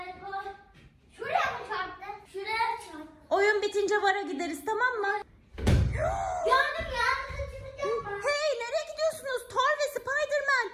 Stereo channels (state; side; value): identical; both; correlation 1.00